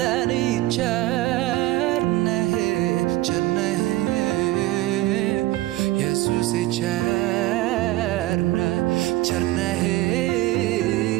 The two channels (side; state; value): left; quieter; 17.3 dB